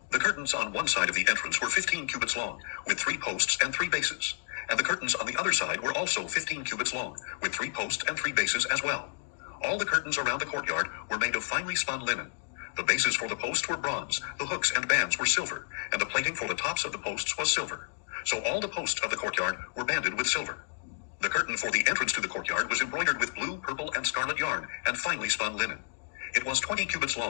The curtains on one side of the entrance were 15 cubits long, with 3 posts and 3 bases. And the curtains on the other side were also 15 cubits long, with 3 posts and 3 bases as well. All the curtains around the courtyard were made of finely spun linen. The bases for the posts were bronze, the hooks and bands were silver, and the plating for the tops of the posts was silver. So all the posts of the courtyard were banded with silver. The curtain for the entrance to the courtyard was embroidered with blue, purple, and scarlet yarn and finely spun linen. It was 20 cubits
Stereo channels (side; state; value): right; silent; digital silence